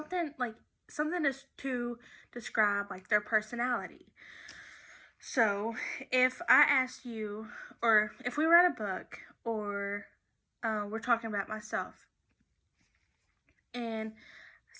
to describe like their personality. So, if I ask you, or if we read a book, or we're talking about myself, and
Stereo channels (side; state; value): both; identical; correlation 1.00